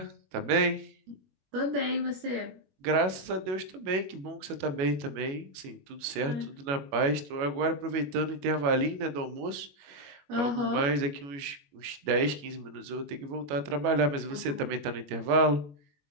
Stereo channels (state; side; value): late; left; 21 ms